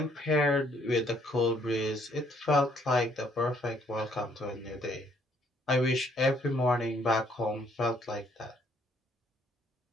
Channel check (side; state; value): both; normal; correlation 0.66